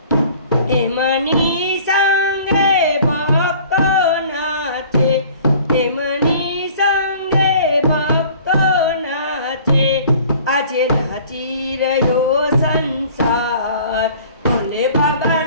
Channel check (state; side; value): inverted; both; correlation -0.49